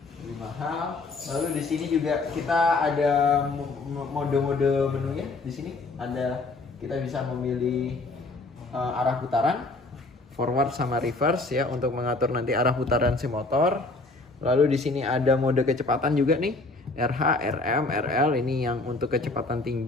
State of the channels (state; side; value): quieter; right; 3.3 dB